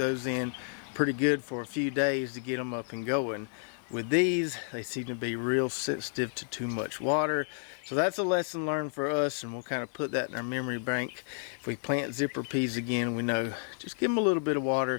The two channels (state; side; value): silent; right; digital silence